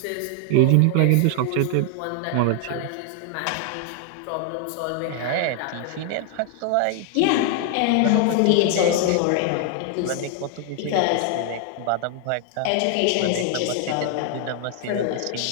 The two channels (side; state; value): both; different; correlation 0.00